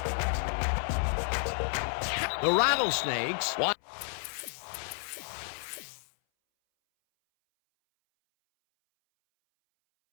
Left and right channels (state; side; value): silent; right; 57 dB below the other